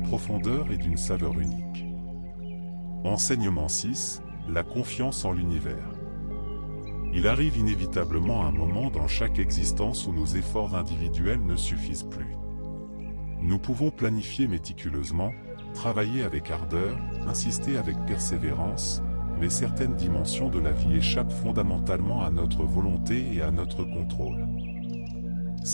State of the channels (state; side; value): inverted; both; correlation -1.00